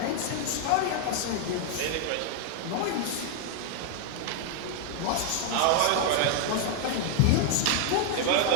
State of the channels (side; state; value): both; different; correlation 0.00